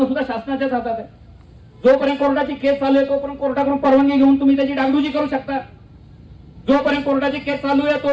सुद्धा शासनाच्याच हातात आहे. जोपर्यंत कोर्टाची केस चालू आहे तोपर्यंत कोर्टाकडून परवानगी घेऊन तुम्ही त्याची डागडुजी करू शकता. जोपर्यंत कोर्टाची केस चालू आहे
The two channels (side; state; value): both; identical; correlation 1.00